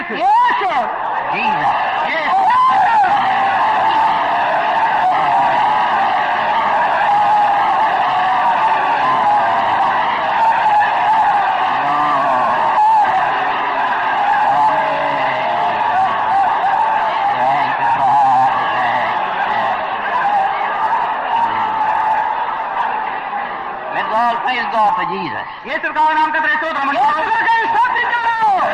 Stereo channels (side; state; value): both; identical; correlation 1.00